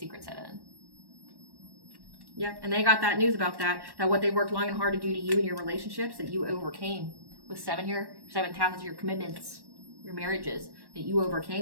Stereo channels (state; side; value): late; left; 1.1 ms